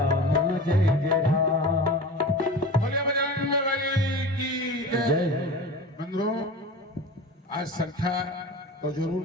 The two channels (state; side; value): normal; both; correlation 0.33